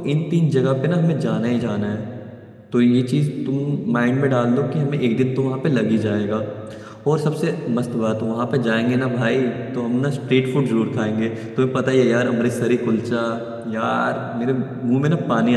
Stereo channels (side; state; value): both; identical; correlation 1.00